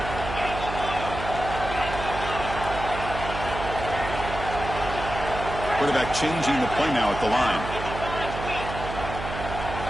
Quarterback changing the play now at the line.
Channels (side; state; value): right; noise; hum, 7 dB below the sound